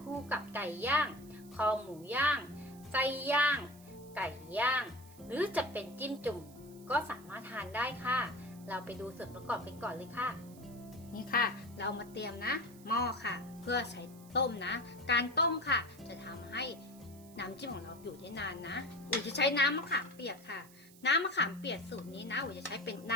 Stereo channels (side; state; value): right; noise; hiss, 23 dB below the sound